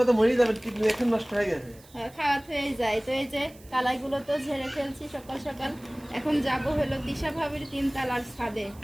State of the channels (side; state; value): right; noise; hiss, 25 dB below the sound